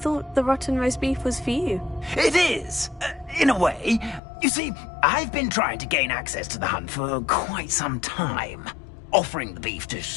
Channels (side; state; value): right; drops out; at 4.2 s